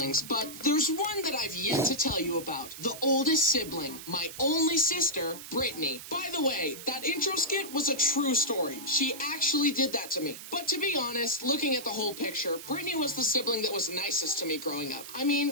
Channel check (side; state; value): right; noise; hiss, 12 dB below the sound